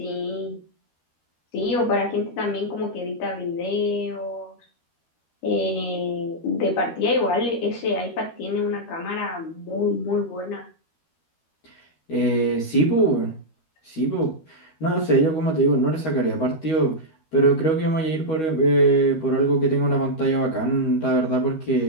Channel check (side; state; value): right; late; 13 ms